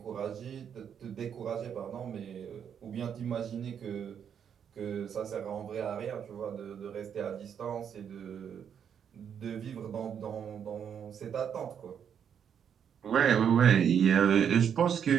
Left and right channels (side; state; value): left; quieter; 8.1 dB